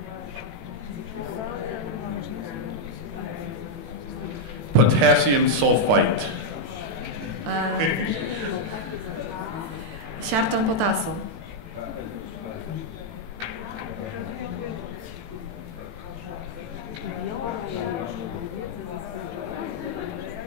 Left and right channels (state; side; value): late; left; 18 ms